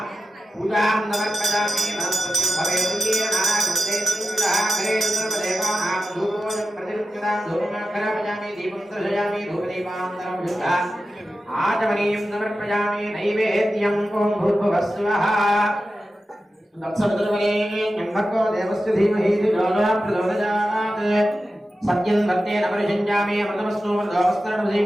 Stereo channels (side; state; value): both; normal; correlation 0.93